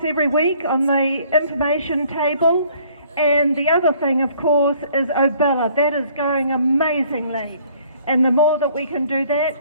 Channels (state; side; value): inverted; both; correlation -0.59